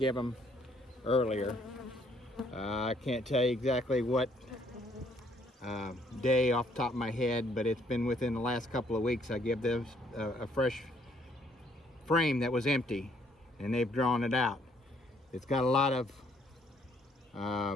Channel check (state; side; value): normal; both; correlation 0.66